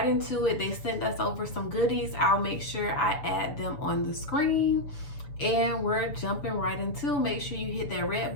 into it. They sent us over some goodies. I'll make sure I add them on the screen. And we're jumping right into. Make sure you hit that red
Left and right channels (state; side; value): late; right; 7.0 ms